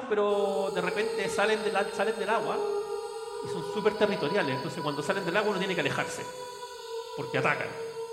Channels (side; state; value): both; identical; correlation 1.00